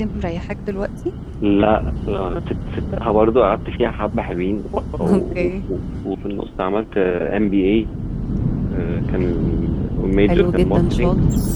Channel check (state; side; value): identical; both; correlation 1.00